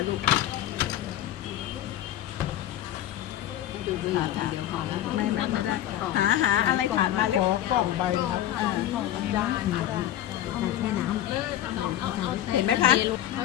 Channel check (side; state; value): right; quieter; 12.7 dB